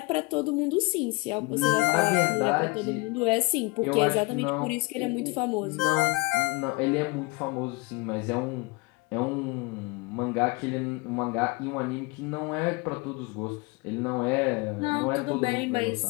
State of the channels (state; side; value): quieter; right; 25.7 dB